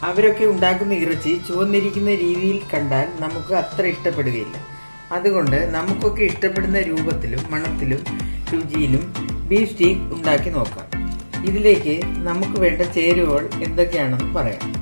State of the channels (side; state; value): both; inverted; correlation -1.00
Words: അവരൊക്കെ ഉണ്ടാക്കുന്ന ഇറച്ചി ചുവന്നിരിക്കുന്ന രീതിയിൽ കണ്ടാൽ നമുക്ക് അത്ര ഇഷ്ടപ്പെടുകയില്ല. അതുകൊണ്ട് നമുക്കൊക്കെ ഇഷ്ടപ്പെടുന്ന രൂപത്തിലും മണത്തിലും രുചിയിലും ബീഫ് സ്റ്റീക്ക് ഉണ്ടാക്കി നോക്കാം. ഇതിലേക്ക് നമുക്ക് വേണ്ട ചേരുവകൾ എന്തൊക്കെയാണെന്ന് പറയാം.